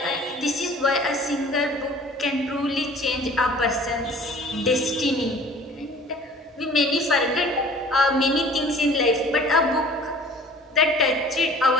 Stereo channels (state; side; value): normal; both; correlation 0.49